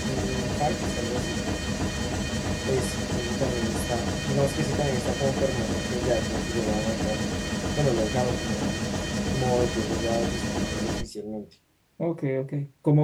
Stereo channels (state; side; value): identical; both; correlation 1.00